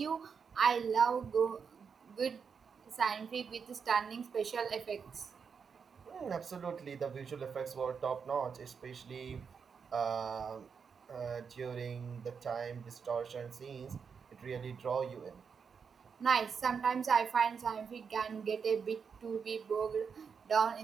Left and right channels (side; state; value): left; quieter; 6.2 dB